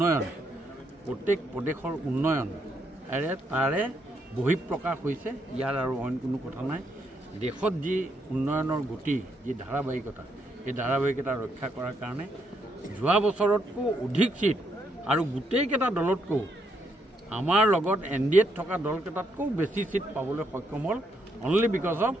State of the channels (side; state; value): both; normal; correlation 0.76